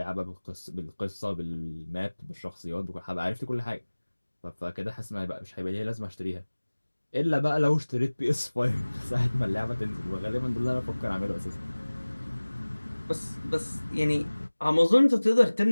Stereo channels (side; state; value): both; inverted; correlation -1.00